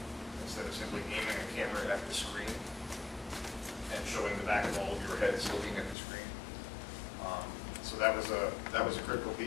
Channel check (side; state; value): right; drops out; at 6.0 s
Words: instead of simply aiming a camera at the screen and showing the back of all of your heads looking at the screen. So that was a critical